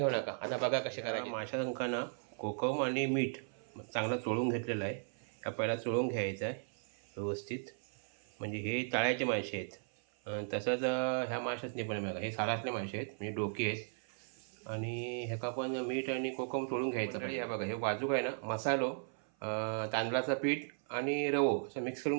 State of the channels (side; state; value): left; silent; 53 dB below the other